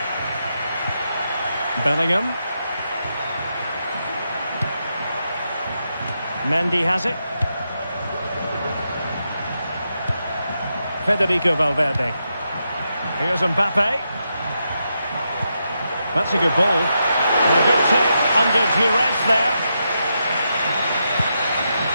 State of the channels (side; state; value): both; inverted; correlation -0.84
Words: Bellingham. Mendy has it. Federico Valverde. Here's Mbappe. That's a good ball. And a good take under duress there.